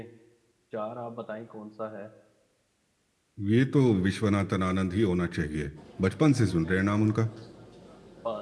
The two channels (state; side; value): identical; both; correlation 1.00